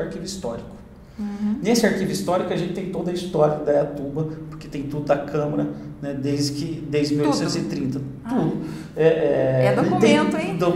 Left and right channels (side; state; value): both; identical; correlation 1.00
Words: histórico. Uhum. Nesse arquivo histórico a gente tem toda a história da Indaiatuba, porque tem tudo da Câmara, né, desde 1830. Tudo. Documento, hein?